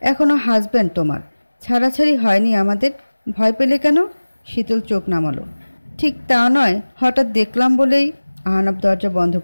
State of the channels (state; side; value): inverted; both; correlation -1.00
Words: এখনো হাজব্যান্ড তোমার, ছাড়াছাড়ি হয়নি আমাদের। ভয় পেলে কেন? শীতল চোখ নামালো। ঠিক তা নয়, হঠাৎ দেখলাম বলেই। আহনাফ দরজা বন্ধ